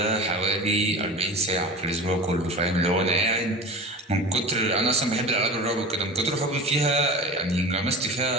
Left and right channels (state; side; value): normal; both; correlation 0.33